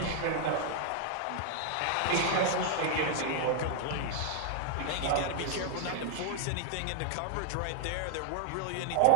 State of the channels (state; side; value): different; both; correlation -0.01